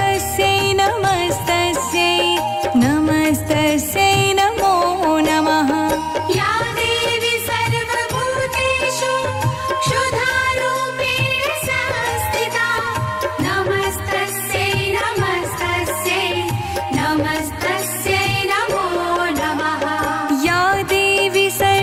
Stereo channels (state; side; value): identical; both; correlation 1.00